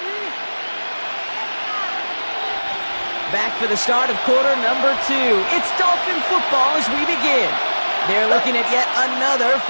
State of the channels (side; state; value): both; inverted; correlation -1.00